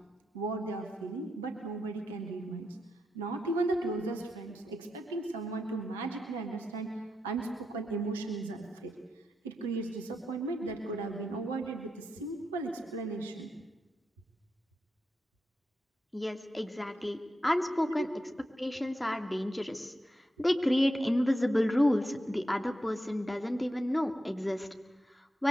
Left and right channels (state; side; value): normal; both; correlation 0.86